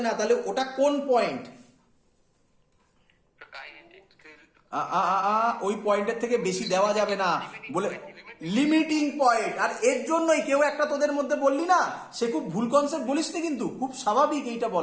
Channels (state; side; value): identical; both; correlation 1.00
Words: না, তাহলে ওটা কোন পয়েন্ট? ওই পয়েন্টের থেকে বেশি দেওয়া যাবে না বলে লিমিটিং পয়েন্ট। আর এর জন্যই কেউ একটা তোদের মধ্যে বললি না, সে খুব ভুল কনসেপ্ট বলিস নি, কিন্তু খুব স্বাভাবিক এইটা